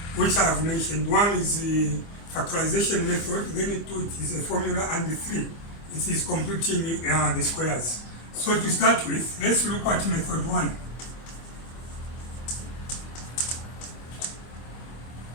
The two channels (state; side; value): late; right; 25 ms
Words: which I have mentioned. One is the factorization method, then 2 it is a formula, and the 3 it is completing the squares. So to start with, let's look at method 1.